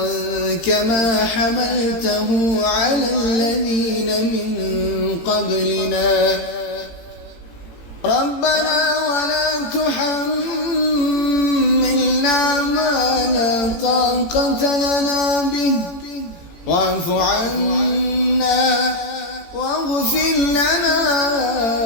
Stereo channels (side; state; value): right; late; 18 ms